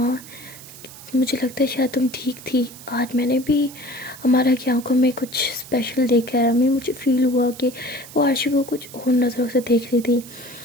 मुझे लगता है शायद तुम ठीक थी, आज मैंने भी हमारा की आंखों में कुछ स्पेशल देखा है, हमें मुझे फील हुआ कि वो आरशी को कुछ और नज़रों से देख रही थी।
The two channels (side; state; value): right; noise; hiss, 17 dB below the sound